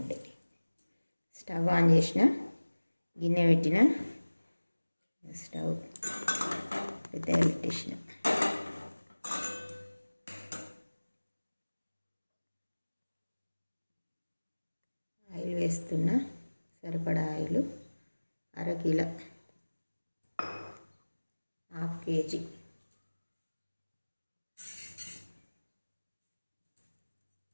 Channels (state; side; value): inverted; both; correlation -1.00